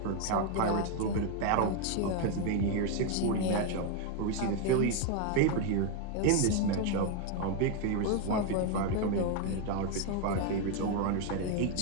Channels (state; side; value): different; both; correlation 0.01